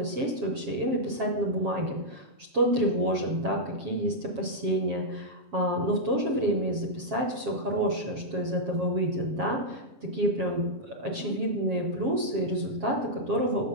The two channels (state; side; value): late; left; 7.4 ms